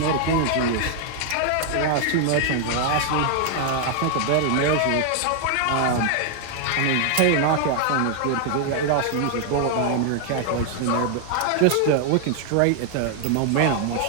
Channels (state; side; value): different; both; correlation 0.00